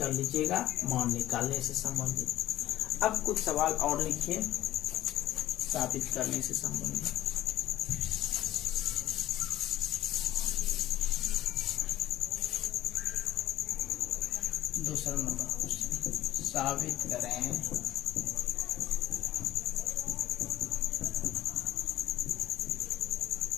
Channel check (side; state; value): right; quieter; 13.9 dB